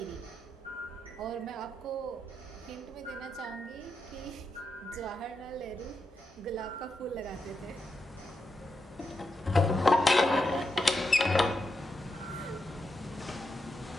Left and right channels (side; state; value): both; normal; correlation 0.86